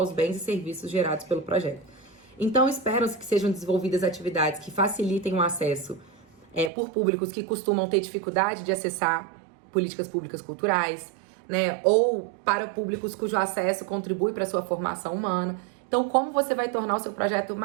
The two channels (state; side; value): drops out; left; at 6.7 s